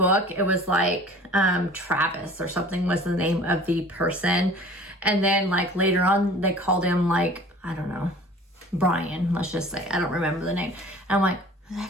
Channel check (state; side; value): normal; both; correlation 0.46